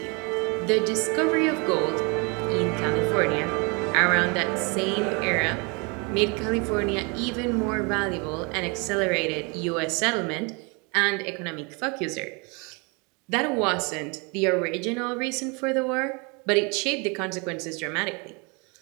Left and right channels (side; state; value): left; quieter; 31.0 dB